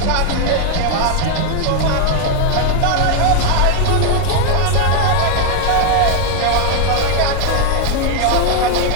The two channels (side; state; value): both; different; correlation 0.00